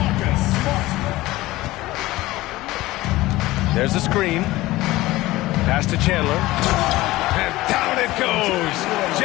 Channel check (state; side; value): quieter; right; 18.1 dB